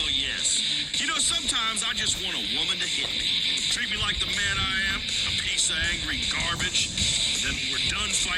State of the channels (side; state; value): both; identical; correlation 1.00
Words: yes. You know, sometimes I just want a woman to hit me. Treat me like the man I am, a piece of angry garbage. And then when we're done